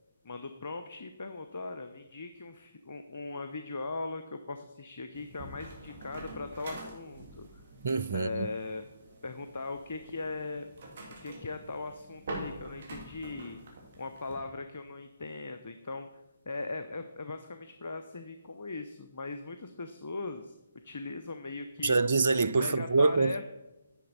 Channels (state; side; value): inverted; both; correlation -0.82